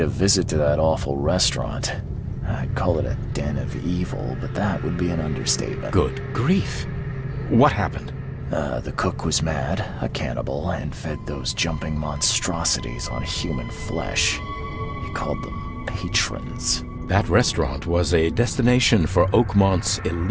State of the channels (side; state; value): both; identical; correlation 1.00